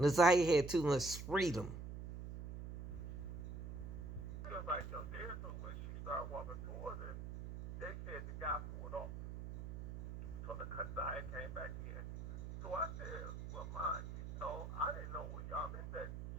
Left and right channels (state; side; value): noise; right; hum, 8 dB below the sound